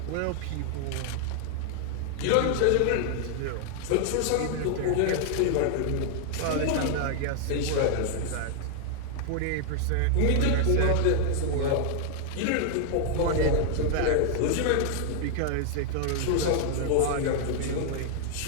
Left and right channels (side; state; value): both; different; correlation 0.00